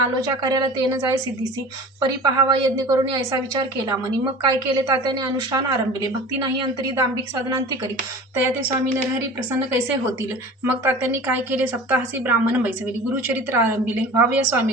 कार्याला तेन जाय सिद्धीसी. परी पहावा यज्ञ करून ऐसा विचार केला मनी. मग काय केले तात्याने अनुष्ठान आरंभिले. भक्ती नाही अंतरी दांभिक साधनांती करी. तया ते स्वामी नरहरी प्रसन्न कैसे होतील. मग तात्यांनी काय केले. सप्ताहासी ब्राह्मण बैसविले. गुरुचरित्र आरंभिले. व्हावया स्वामी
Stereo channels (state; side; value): normal; both; correlation 0.39